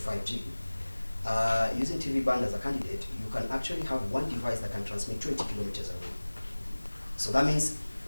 Using TV band as a candidate, you can actually have one device that can transmit 20 kilometers away. So that means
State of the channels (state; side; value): inverted; both; correlation -1.00